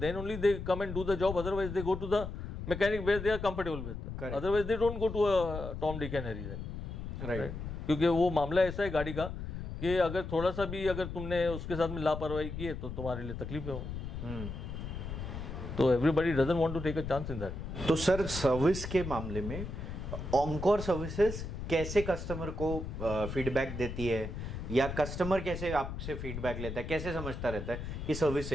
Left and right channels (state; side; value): noise; left; rumble, 7 dB below the sound